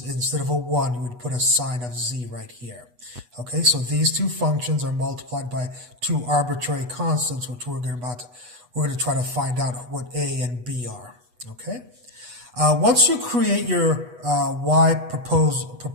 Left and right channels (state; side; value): late; left; 8.2 ms